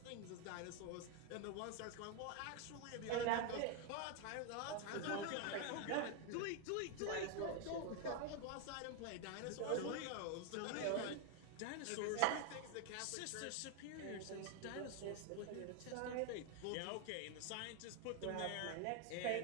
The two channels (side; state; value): both; different; correlation 0.01